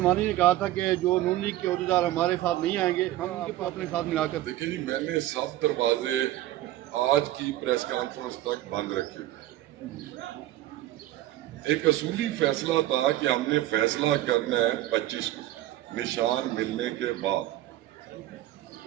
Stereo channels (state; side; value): quieter; left; 14.9 dB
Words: نے کہا تھا کہ جو نون لیگ کے عہدیدار ہمارے ساتھ نہیں آئیں گے ہم ان کو اپنے ساتھ ملا کر. دیکھیں جی, میں نے سب دروازے آج کی پریس کانفرنس تک بند رکھے. ایک اصولی فیصلہ تھا کہ ہم نے فیصلہ کرنا ہے 25 کو نشان ملنے کے بعد.